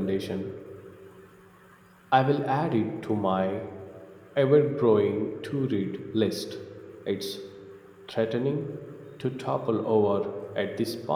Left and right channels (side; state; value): both; identical; correlation 1.00